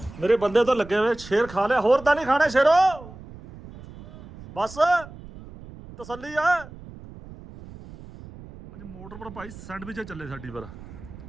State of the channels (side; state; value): right; noise; rumble, 17 dB below the sound